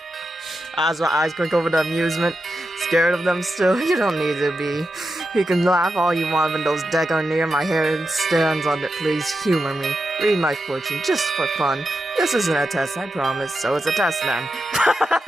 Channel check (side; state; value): both; normal; correlation 0.88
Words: Azra eyes quick over the amusement. Scared of them still? You don't need to be. You can laugh all you want when those decks are near my hair stands on it. Please humor me. Read my fortune, just for fun. This isn't a test, I promise. So it's a test then.